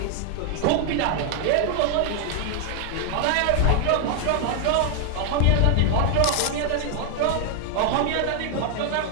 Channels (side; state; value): both; different; correlation 0.00